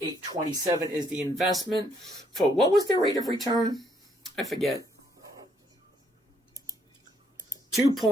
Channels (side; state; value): both; normal; correlation 0.70